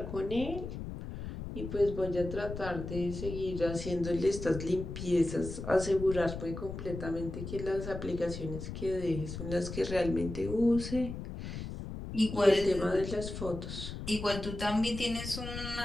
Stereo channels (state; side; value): noise; left; rumble, 8 dB below the sound